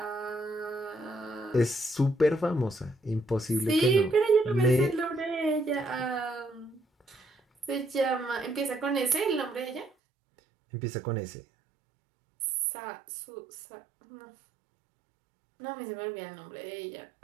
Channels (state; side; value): drops out; left; at 9.9 s